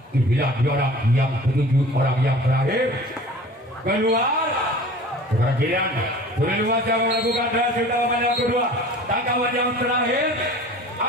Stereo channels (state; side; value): normal; both; correlation 0.43